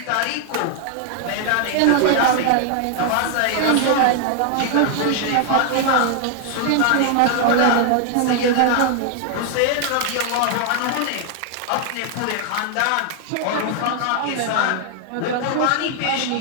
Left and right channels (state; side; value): different; both; correlation 0.00